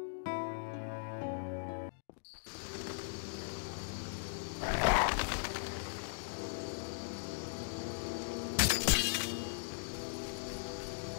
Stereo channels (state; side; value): silent; right; digital silence